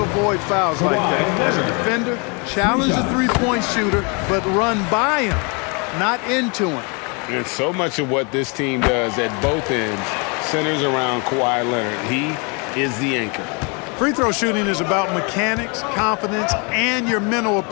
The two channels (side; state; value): right; quieter; 33.1 dB